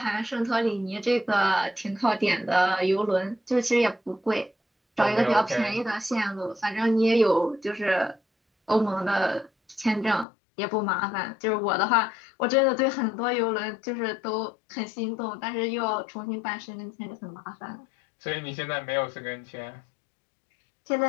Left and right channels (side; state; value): right; drops out; at 10.2 s